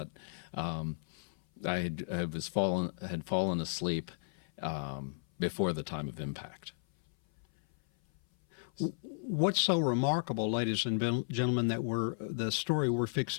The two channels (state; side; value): silent; right; 55 dB below the other